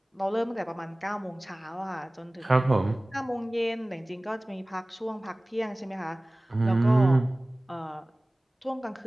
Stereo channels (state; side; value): normal; both; correlation 0.98